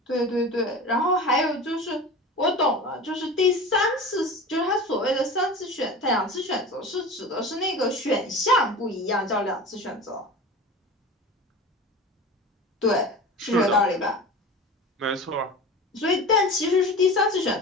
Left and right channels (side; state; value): both; normal; correlation 0.33